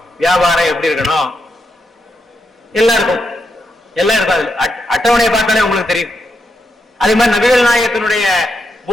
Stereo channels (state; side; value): normal; both; correlation 0.83